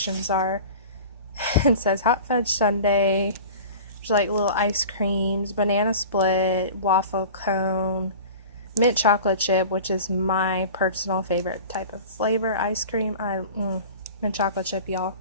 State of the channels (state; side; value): inverted; both; correlation -0.38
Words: are. It says hot fudge sundae, there's like little ice creams, banana split, waffle cone, mint chocolate chip, which is my personal favorite type of flavor ice cream. Mint chocolate chip, y'all.